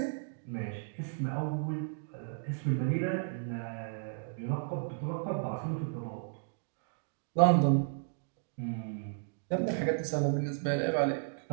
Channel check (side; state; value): left; silent; digital silence